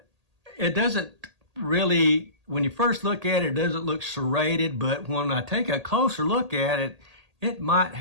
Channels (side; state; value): left; late; 1.8 ms